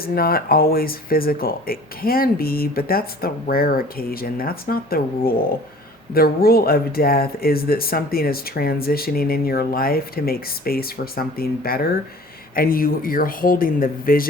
not always physical. It can be, but that's the rare occasion. That's not the rule. The rule of death is that something is transitioning in your life to make space for something better. And you're holding the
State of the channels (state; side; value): normal; both; correlation 0.47